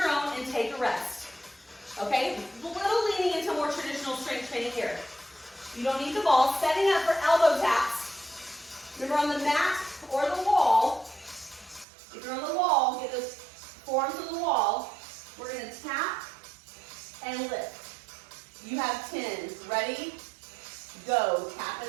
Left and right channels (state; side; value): drops out; left; at 11.9 s